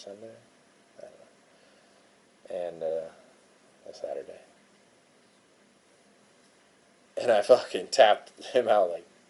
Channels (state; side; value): identical; both; correlation 1.00